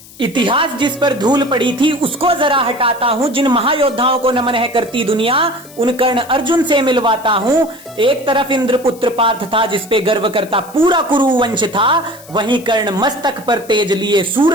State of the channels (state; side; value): noise; left; hiss, 21 dB below the sound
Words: इतिहास जिस पर धूल पड़ी थी उसको जरा हटाता हूँ। जिन महायोद्धाओं को नमन है करती दुनिया, उन कर्ण अर्जुन से मिलवाता हूँ। एक तरफ इंद्रपुत्र पार्थ था जिस पे गर्व करता पूरा कुरु वंश था, वहीं कर्ण मस्तक पर तेज लिए